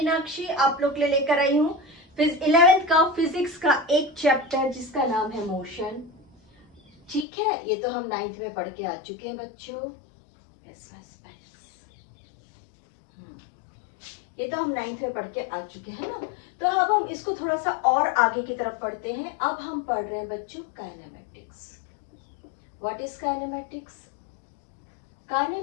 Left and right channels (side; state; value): right; drops out; at 7.2 s